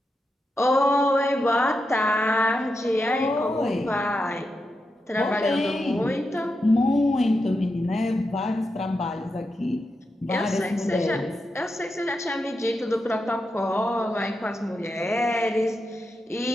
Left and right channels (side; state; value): both; normal; correlation 0.87